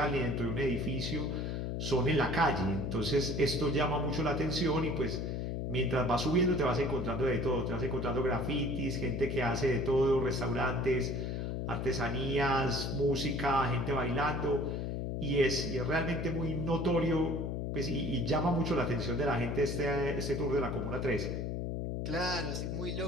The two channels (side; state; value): left; noise; hum, 2 dB below the sound